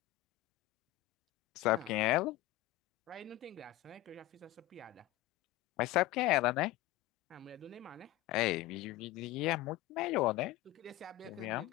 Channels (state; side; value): quieter; right; 16.0 dB